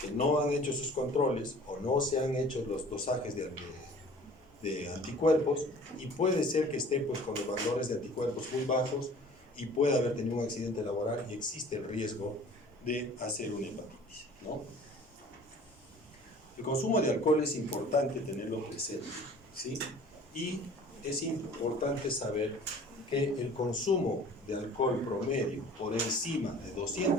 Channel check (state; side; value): normal; both; correlation 0.48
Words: que no han hecho sus controles o no se han hecho los dosajes de de anticuerpos y puede ser que esté pues, con los valores de anticuerpos muy bajos y pueda haber tenido un accidente laboral y existe el riesgo de hacer una hepatitis, ¿no? El consumo de alcohol es importante tenerlo presente, ¿sí? Y es importante saber que el consumo de alcohol promedio por encima de